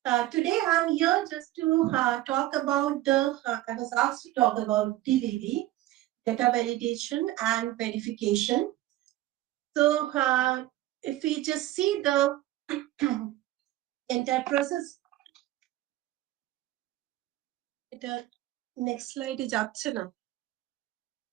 today I'm here just to talk about I was asked to talk about DVV, data validation and verification. So, if we just see the entire process, the next slide is Asanna.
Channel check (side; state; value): left; quieter; 15.7 dB